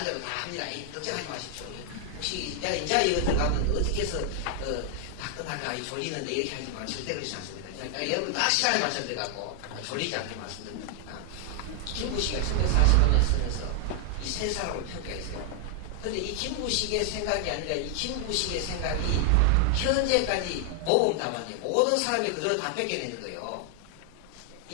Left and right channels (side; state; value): both; different; correlation 0.00